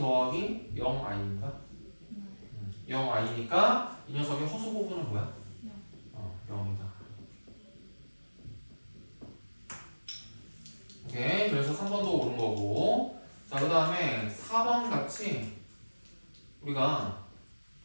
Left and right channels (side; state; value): both; inverted; correlation -1.00